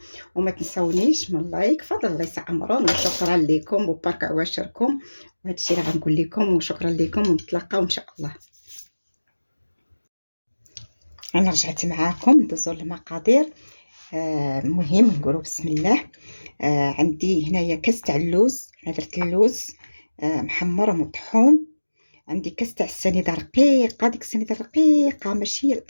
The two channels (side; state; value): both; inverted; correlation -1.00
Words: وما تنسونيش من لايك، فضل الله يسعمرون، وشكرا لكم وبارك عواشركم. وهذا الشيء اللي غنقول لكم، وشكرا لكم، ونتلاقاو ان شاء الله. انا رجعت معاكم ندوزو المقادير. المهم نقولوا بسم الله. عندي هنايا كاس تاع اللوز، درت اللوز محمر ومطحون. عندي كاس تاع السنيده رقيقه، ديك السنيده رقيقه ماشي